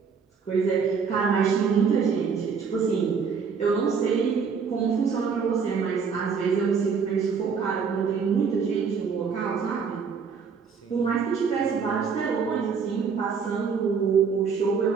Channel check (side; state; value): left; quieter; 5.9 dB